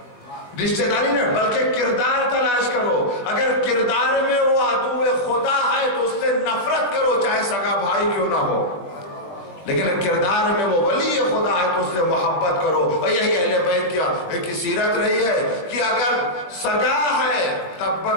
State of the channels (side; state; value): right; late; 20 ms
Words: رشتہ داری نہ بلکہ کردار تلاش کرو. اگر کردار میں وہ عدو خدا ہے تو اس سے نفرت کرو چاہے سگا بھائی کیوں نہ ہو، لیکن کردار میں وہ ولی خدا ہے تو اس سے محبت کرو. اور یہی اہل بیت کی سیرت رہی ہے کہ اگر سگا ہے